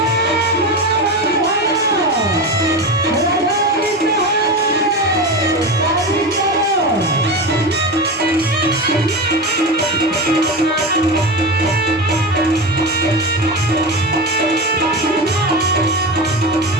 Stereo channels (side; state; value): both; normal; correlation 0.22